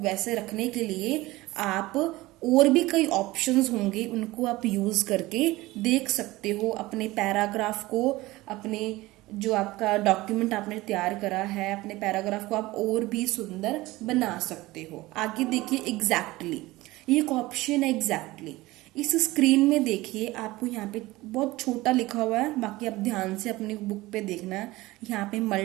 रखने के लिए आप और भी कई ऑप्शंस होंगे, उनको आप यूज करके देख सकते हो. अपने पैराग्राफ को, अपने जो आपका डॉक्यूमेंट आपने तैयार करा है, अपने पैराग्राफ को आप और भी सुंदर बना सकते हो. आगे देखिए एग्जैक्टली, ये एक ऑप्शन है एग्जैक्टली. इस स्क्रीन में देखिए आपको यहाँ पे बहुत छोटा लिखा हुआ है, बाकी आप ध्यान से अपनी बुक पे देखना है. यहाँ पे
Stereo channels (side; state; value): left; quieter; 19.2 dB